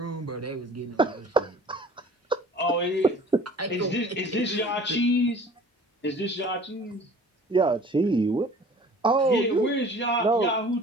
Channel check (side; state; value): both; normal; correlation 0.47